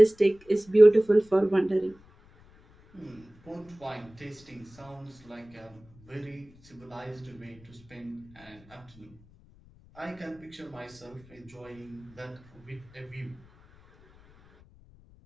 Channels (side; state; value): left; noise; rumble, 26 dB below the sound